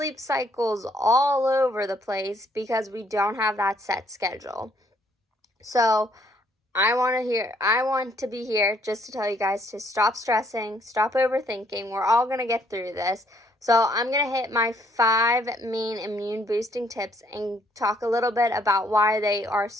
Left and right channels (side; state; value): both; normal; correlation 0.67